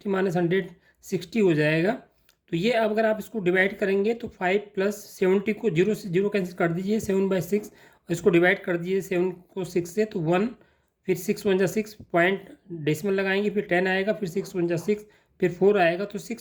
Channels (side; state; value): both; identical; correlation 1.00